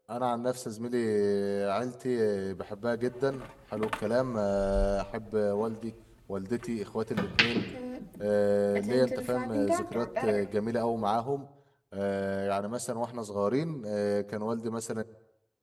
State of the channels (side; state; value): both; identical; correlation 1.00